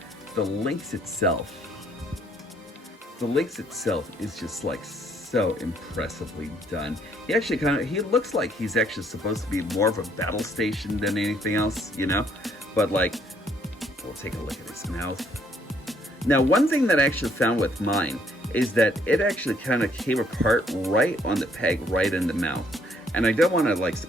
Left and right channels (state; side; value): normal; both; correlation 0.66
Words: the Lynx itself. The Lynx itself is just like so impressively done. He actually he looks like he's actually supposed to be more of a battle station than anything else, you know? But like, we'll take a look at his mouth. Now, one thing that I actually found with mine is that it actually kind of came apart right on the peg, right in the mouth. And I don't want to like